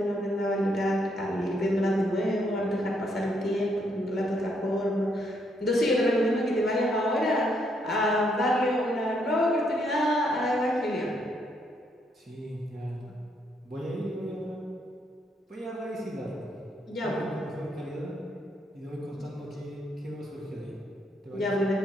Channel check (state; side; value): normal; both; correlation 0.74